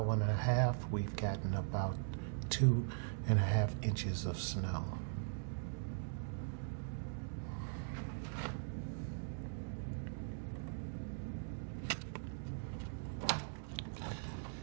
and a half, we've gotten about 2.5 inches of snow.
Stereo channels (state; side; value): silent; left; digital silence